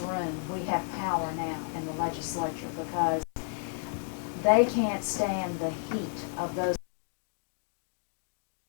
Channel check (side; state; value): right; silent; 57 dB below the other